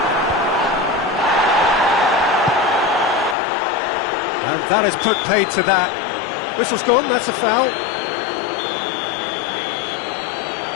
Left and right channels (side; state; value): right; drops out; at 3.4 s